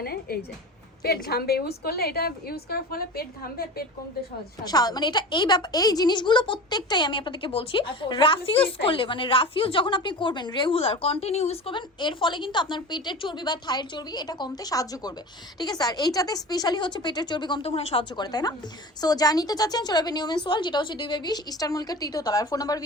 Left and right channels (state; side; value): normal; both; correlation 0.33